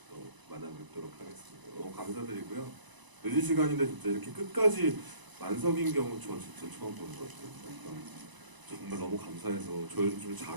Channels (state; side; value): late; left; 1.0 ms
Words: 또 만나뵙도록 하겠습니다. 너무 감사드리고요. 늦은 시간인데 진짜 이렇게 끝까지 만석인 경우 저 진짜 처음 보는 것 같아요. 정말 너무 감사해서 저 요즘 좀